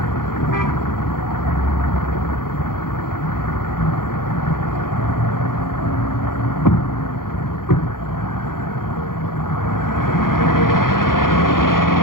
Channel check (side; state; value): right; late; 0.91 ms